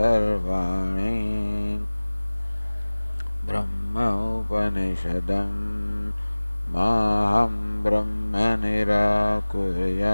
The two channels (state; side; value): inverted; both; correlation -1.00